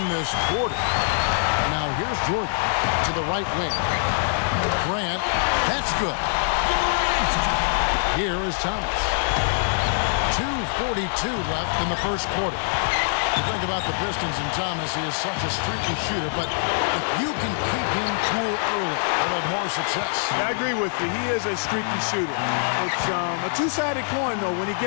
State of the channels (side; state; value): right; silent; digital silence